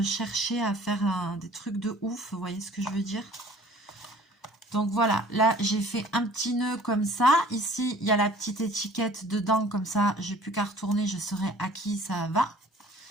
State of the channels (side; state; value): both; normal; correlation 0.51